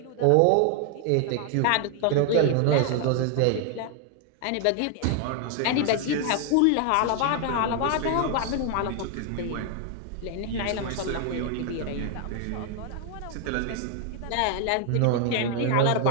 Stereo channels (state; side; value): different; both; correlation 0.00